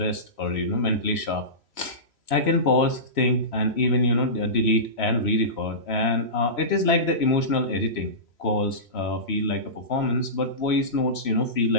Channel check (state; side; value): late; right; 3.0 ms